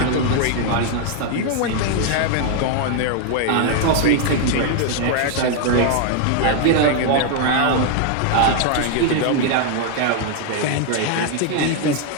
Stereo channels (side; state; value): both; different; correlation 0.00